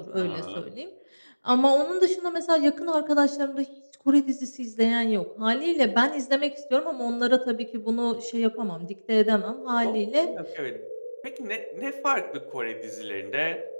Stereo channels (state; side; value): inverted; both; correlation -1.00